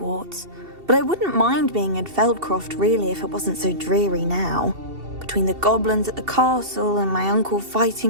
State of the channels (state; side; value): late; left; 2.7 ms